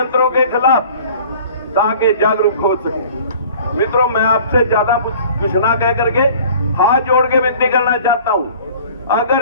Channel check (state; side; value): inverted; both; correlation -0.48